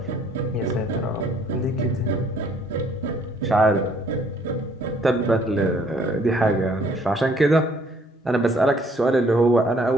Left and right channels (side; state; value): both; normal; correlation 0.62